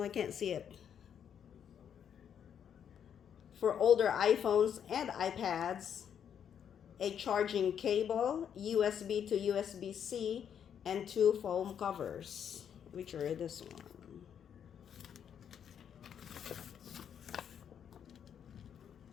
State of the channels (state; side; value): quieter; right; 8.5 dB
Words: I can't see it, for older iPhones and iPads, a charging cable, USB to USB-C, and two foam covers, which are this one.